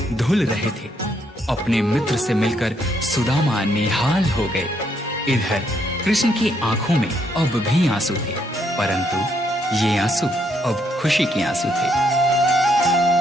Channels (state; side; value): normal; both; correlation 0.73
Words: धुल रहे थे। अपने मित्र से मिलकर सुदामा निहाल हो गए। इधर कृष्ण की आंखों में अब भी आंसू थे, परंतु ये आंसू अब खुशी के आंसू थे।